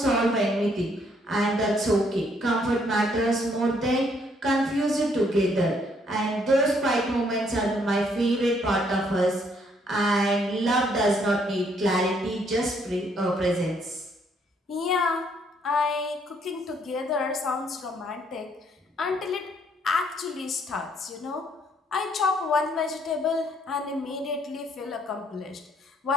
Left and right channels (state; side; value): normal; both; correlation 0.68